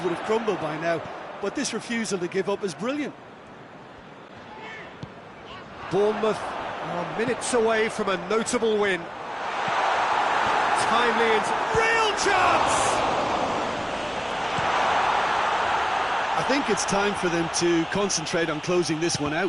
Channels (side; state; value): both; identical; correlation 1.00